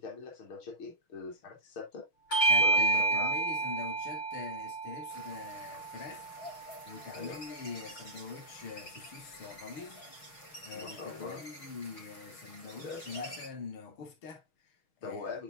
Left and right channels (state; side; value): late; right; 6.4 ms